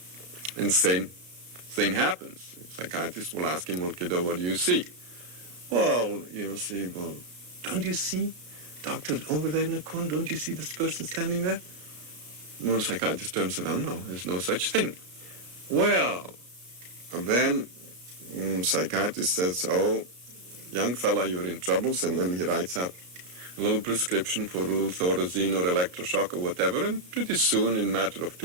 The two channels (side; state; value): left; late; 34 ms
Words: and same thing happens. The psychiatrist will ask him, "Well, kiddo, what do you see?" "Well, you'll see, don't you see, doctor, over there in the corner, don't you see this person standing there?" Well, the psychiatrist turns around, "No, there's no such thing." Well, and then psychiatrist says, "Oh, young fella, you're in troubles," and then he writes out a little prescription for a little Thorazine or electroshock or whatever, and pretty soon, in a matter of